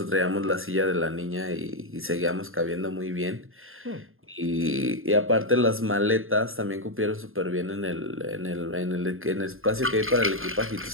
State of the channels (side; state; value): left; late; 0.60 ms